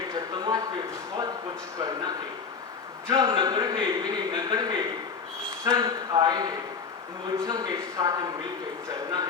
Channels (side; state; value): right; quieter; 5.5 dB